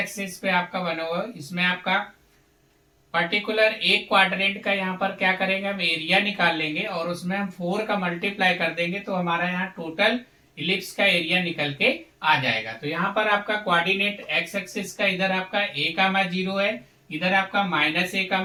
पे आपका बना हुआ है, इसमें आपका पर्टिकुलर एक क्वाड्रेंट का यहाँ पर क्या करेंगे, हम एरिया निकाल लेंगे और उसमें हम 4 का मल्टीप्लाई कर देंगे तो हमारा यहाँ टोटल इलिप्स का एरिया निकल के आ जाएगा। तो यहाँ पर आपका कोऑर्डिनेट एक्स एक्सिस का इधर आपका a,0 है, इधर आपका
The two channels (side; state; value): both; identical; correlation 1.00